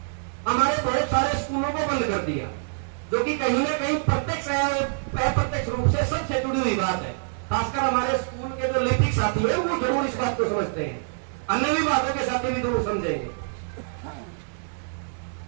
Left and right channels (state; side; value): silent; left; digital silence